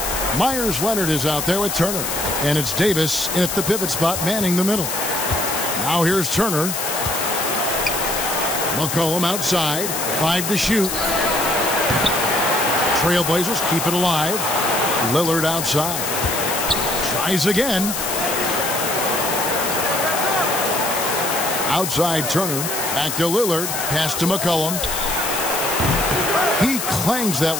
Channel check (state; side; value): noise; left; hiss, 3 dB below the sound